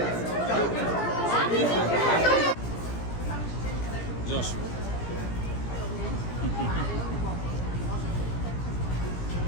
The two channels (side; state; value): right; late; 17 ms